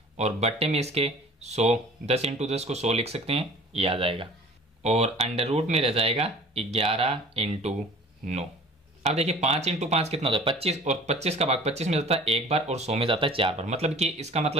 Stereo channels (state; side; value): normal; both; correlation 0.46